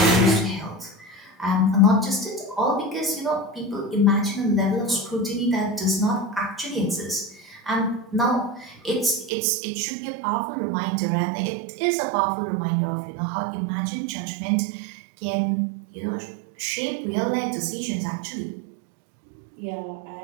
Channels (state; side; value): drops out; left; at 9.3 s